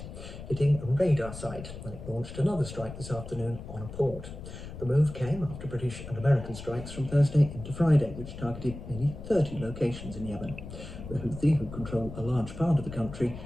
Hitting a radar site when it launched another strike this afternoon on a port. The move came after British and American strikes from Thursday into Friday, which targeted nearly 30 locations in Yemen. The Houthi, who control a large part of the country,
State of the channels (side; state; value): left; noise; rumble, 11 dB below the sound